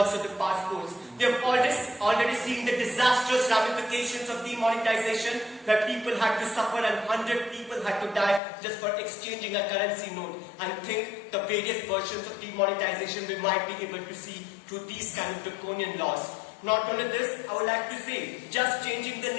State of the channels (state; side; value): drops out; right; at 8.4 s